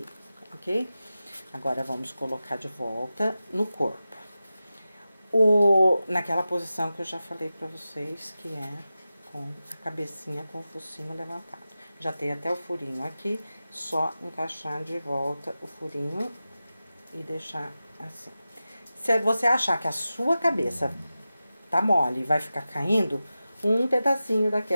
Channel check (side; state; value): both; inverted; correlation -0.93